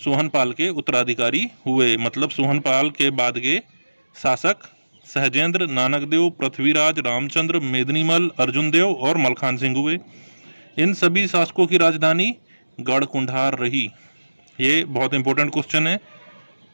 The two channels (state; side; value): inverted; both; correlation -1.00